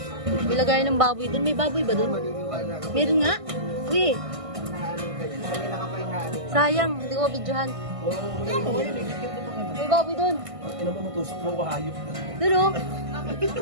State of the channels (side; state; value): left; late; 1.6 ms